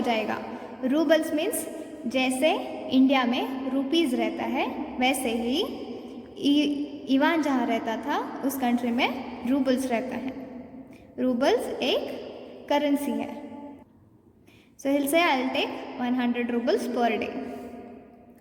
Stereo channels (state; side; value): identical; both; correlation 1.00